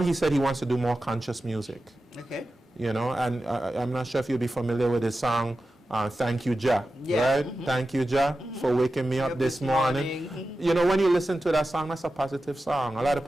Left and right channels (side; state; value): both; normal; correlation 0.93